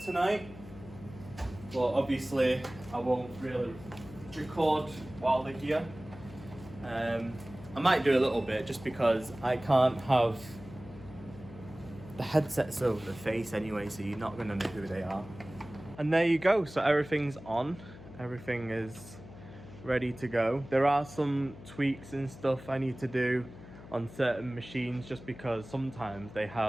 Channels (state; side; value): noise; left; hum, 16 dB below the sound